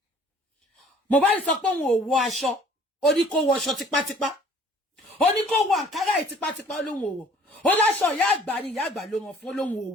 Mohbad sọ pé òun ò wọ̀ aṣọ ó ní kó wọ aṣọ tipátipá ó ní kó wọ àǹkárá ẹ̀ tipátipá lóhun ò wọ̀ ó láṣọ ìyá àgbà ni ìyá àgbà ló ràn fún lóhun ò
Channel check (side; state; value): both; normal; correlation 0.54